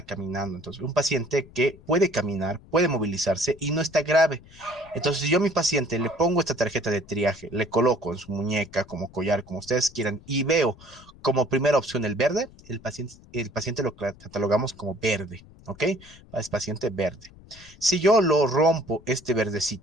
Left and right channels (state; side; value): noise; left; rumble, 22 dB below the sound